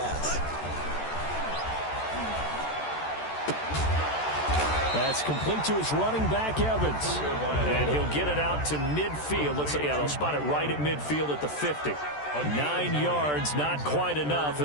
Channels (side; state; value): right; late; 14 ms